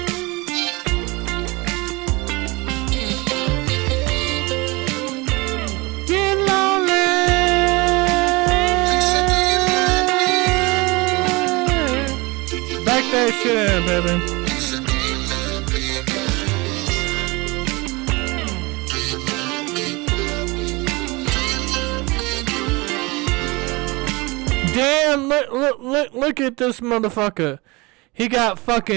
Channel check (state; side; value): quieter; left; 24.8 dB